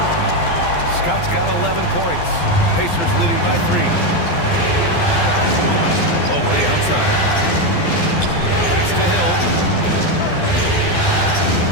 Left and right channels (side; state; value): right; late; 12 ms